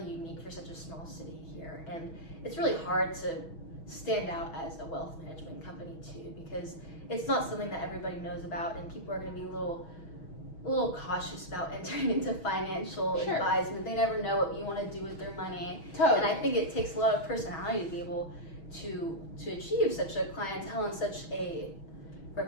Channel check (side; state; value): right; late; 6.2 ms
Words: unique for such a small city here. And it's really hard to stand out as a wealth management company too, because it's not something that everybody knows about, and people are going to be a little cautious about entering into financial advisement. They never know what you want to do with their money. Totally. And I think it takes a lot of personality to be able to achieve such a clientele and such a